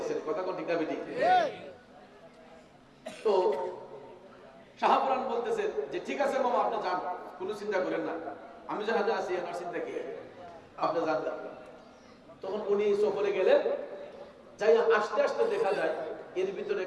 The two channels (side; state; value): both; identical; correlation 1.00